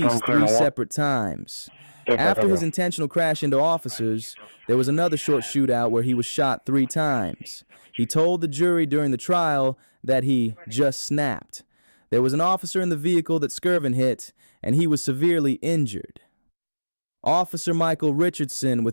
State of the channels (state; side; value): inverted; both; correlation -1.00